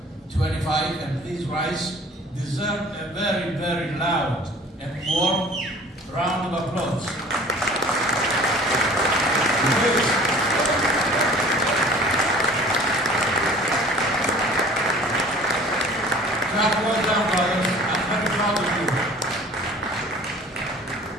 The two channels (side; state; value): both; normal; correlation 0.47